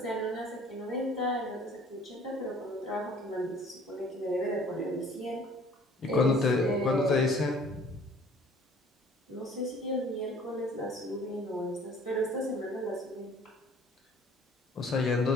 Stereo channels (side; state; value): both; normal; correlation 0.53